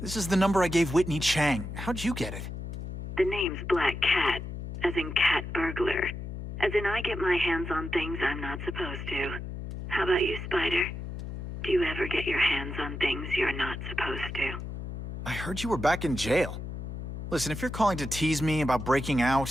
This is the number I gave Whitney Chang. How'd you get it? The name's Black Cat, as in cat burglar. As in I get my hands on things I'm not supposed to. How about you, Spider? Do you ever get your hands on things you're not supposed to? I heard you were back in jail. Listen, if you're calling to tease me about breaking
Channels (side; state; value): left; noise; hum, 7 dB below the sound